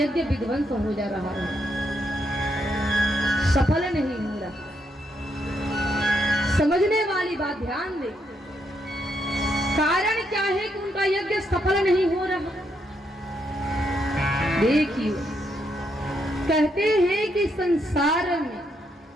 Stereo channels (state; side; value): normal; both; correlation 0.78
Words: विध्वंस हो जा रहा है, सफल नहीं हो रहा। समझने वाली बात ध्यान दे, कारण क्या है कि उनका यज्ञ सफल नहीं हो रहा। देखिए, कहते हैं कि संसार में,